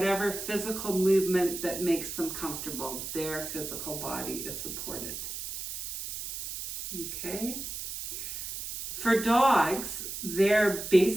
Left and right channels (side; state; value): right; noise; hiss, 6 dB below the sound